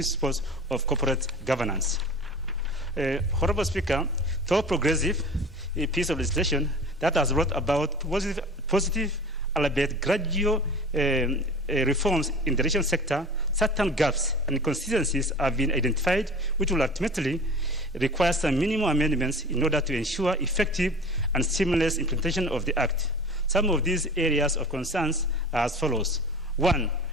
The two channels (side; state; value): both; normal; correlation 0.38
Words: of corporate governance. Honorable Speaker, though progressive, a piece of legislation that has brought about positive albeit gradual reforms in the irrigation sector, certain gaps and inconsistencies have been identified, which will ultimately require some minimum amendments in order to ensure effective and seamless implementation of the Act. Some of these areas of concerns are as follows. 1,